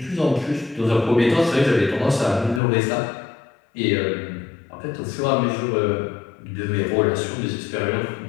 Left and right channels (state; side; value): drops out; right; at 2.6 s